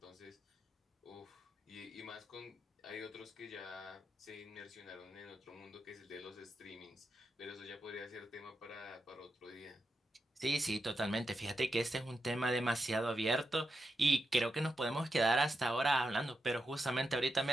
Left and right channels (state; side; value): normal; both; correlation 0.87